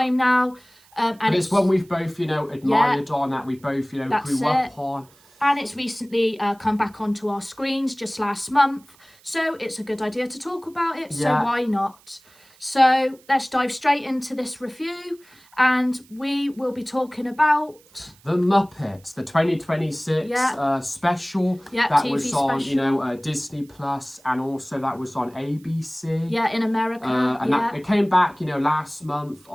now. And it's one we've both, admired on, that we both, grew up on. And it's recently come back onto our screens just last month. So it's a good idea to talk about it. So why not? So let's dive straight into this review. And we will be talking about The Muppets, the 2026 special that TV was on, special. Disney Plus, and also that was on ABC. Yeah, in America. It came back, last month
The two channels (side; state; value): right; noise; hiss, 29 dB below the sound